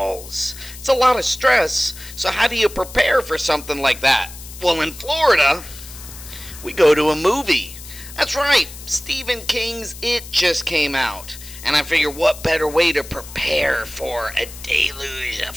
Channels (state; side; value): noise; left; hiss, 15 dB below the sound